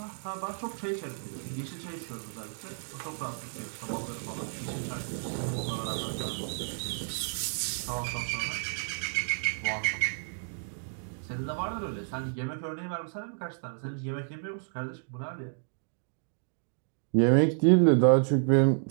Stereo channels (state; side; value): silent; left; digital silence